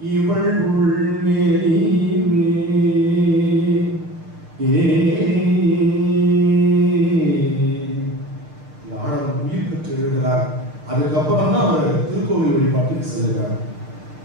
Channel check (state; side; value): late; left; 6.7 ms